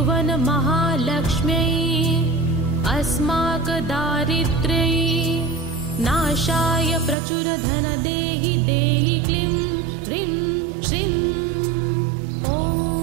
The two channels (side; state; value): left; drops out; at 7.2 s